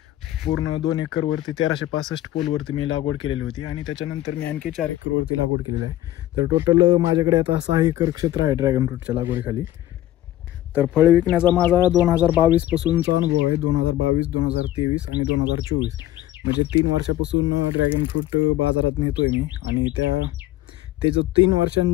पूर्ण 2 एकरवरती 1365 पोलवरती मी लागवड केलेली होती आणि त्याच्यानंतर मी आणखी 4 एकरवरती लागवड केलेली आहे. तर टोटल माझ्याकडे आता 6 एकर क्षेत्र आहे ड्रॅगन फ्रूटच्या लागवडीखाली. तर फळ विकण्याचा माझा 2022 पासूनचा अनुभव आहे. 2022, 2023 आणि 2024 म्हणजे 3 वर्षापासून ड्रॅगन फ्रूट बाजारात नेतोय मी. आणि ते जो 3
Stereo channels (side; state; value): right; quieter; 14.2 dB